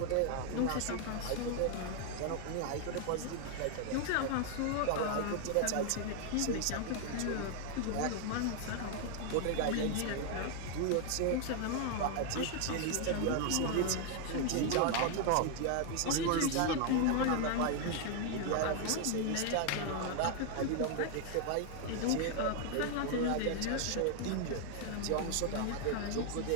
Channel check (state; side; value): different; both; correlation 0.00